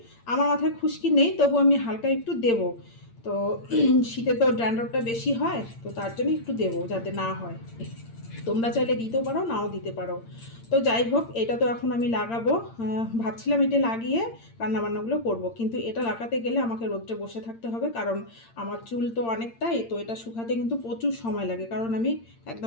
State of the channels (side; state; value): right; late; 8.7 ms